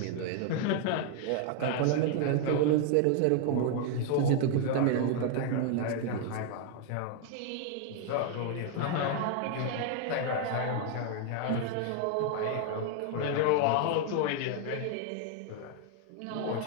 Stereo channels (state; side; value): different; both; correlation 0.00